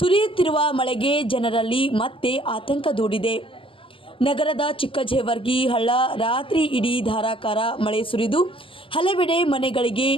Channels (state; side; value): late; right; 0.26 ms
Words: ಮಳೆಗೆ ಜನರಲ್ಲಿ ಮತ್ತೆ ಆತಂಕ ದೂಡಿದೆ. ನಗರದ ಚಿಕ್ಕಜೇವರ್ಗಿ ಹಳ್ಳ ರಾತ್ರಿ ಇಡೀ ಧಾರಾಕಾರ ಮಳೆ ಸುರಿದು ಹಲವೆಡೆ ಮನೆಗಳಿಗೆ